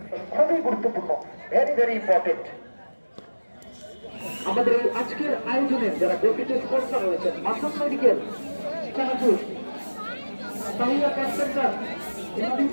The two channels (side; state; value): both; inverted; correlation -1.00